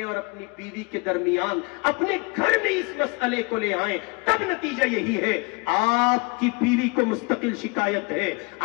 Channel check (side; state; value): right; quieter; 29.7 dB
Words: اور اپنی بیوی کے درمیان اپنے گھر میں اس مسئلے کو لے آئیں تب نتیجہ یہی ہے. آپ کی بیوی کو مستقل شکایت ہے,